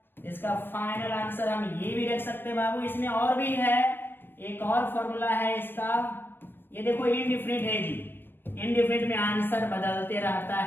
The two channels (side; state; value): right; late; 0.10 ms